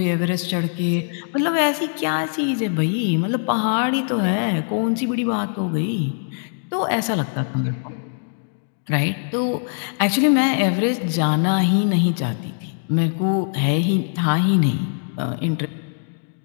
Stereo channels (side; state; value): right; silent; digital silence